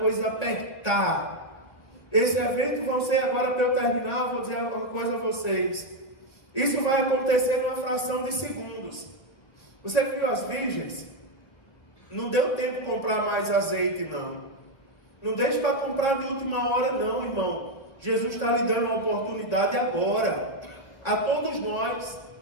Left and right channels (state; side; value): late; right; 1.5 ms